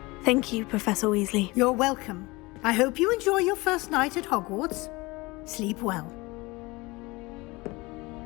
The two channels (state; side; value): quieter; right; 23.1 dB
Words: Thank you, Professor Weasley. You're welcome. I hope you enjoy your first night at Hogwarts. Sleep well.